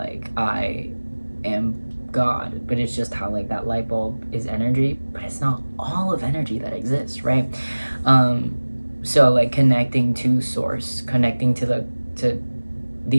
I am God, but it's just how like that light bulb is energy, but it's not all of energy that exists, right? So like connecting to source, connecting to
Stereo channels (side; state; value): both; inverted; correlation -1.00